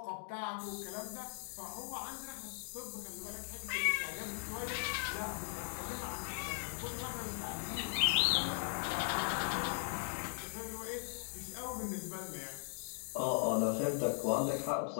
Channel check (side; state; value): right; silent; digital silence